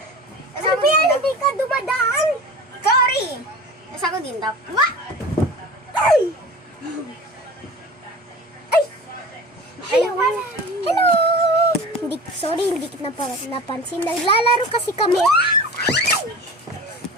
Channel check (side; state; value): both; normal; correlation 0.37